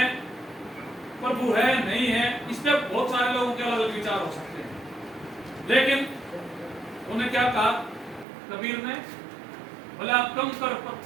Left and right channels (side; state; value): left; drops out; at 8.2 s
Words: प्रभु है नहीं है, इस पे बहुत सारे लोगों के अलग अलग विचार हो सकते हैं। लेकिन उन्हें क्या कहा कबीर ने? बोले आप कंकर